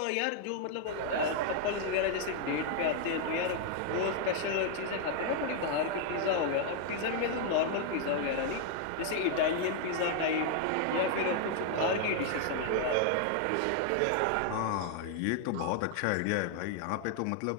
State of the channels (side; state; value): both; different; correlation 0.00